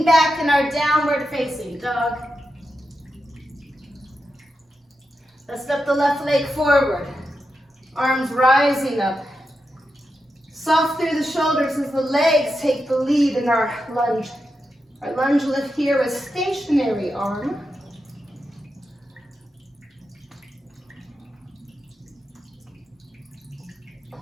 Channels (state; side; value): normal; both; correlation 0.88